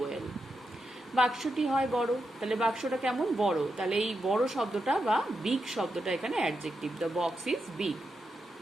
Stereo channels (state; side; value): normal; both; correlation 0.86